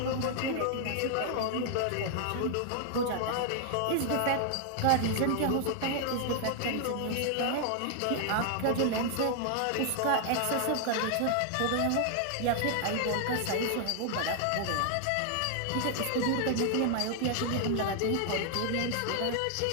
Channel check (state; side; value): different; both; correlation 0.00